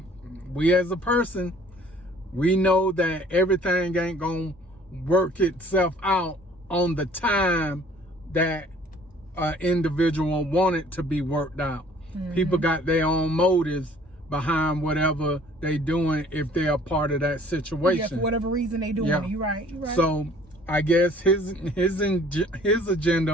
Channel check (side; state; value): both; normal; correlation 0.55